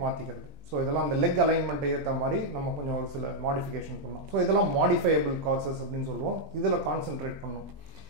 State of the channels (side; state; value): left; late; 20 ms